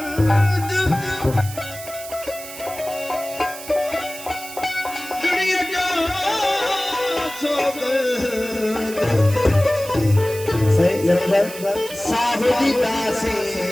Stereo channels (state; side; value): noise; right; hiss, 13 dB below the sound